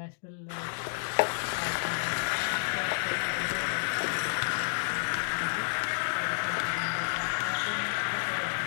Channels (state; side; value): silent; right; digital silence